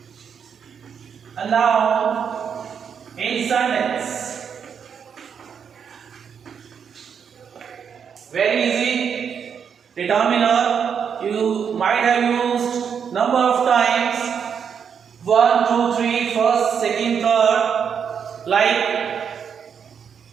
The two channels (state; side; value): quieter; left; 7.2 dB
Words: a noun in sentence. Very easy. Determiner you might have used number of times: 1, 2, 3, first, second, third. Like